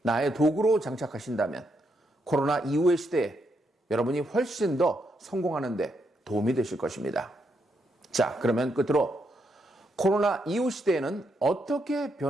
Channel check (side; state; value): both; normal; correlation 0.79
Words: 나의 도구로 장착하신다면 코로나 이후의 시대에 여러분이 훨씬 더 성공하는 데 도움이 되실 것입니다. 자, 그러면 끝으로 코로나 이후 시대에는 어떻게